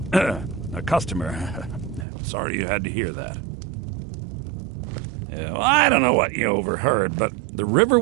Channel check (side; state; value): left; drops out; at 2.1 s